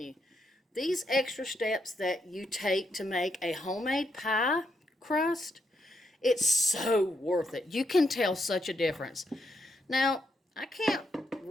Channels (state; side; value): normal; both; correlation 0.80